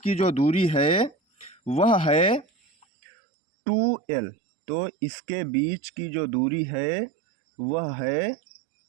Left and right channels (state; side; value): drops out; left; at 2.9 s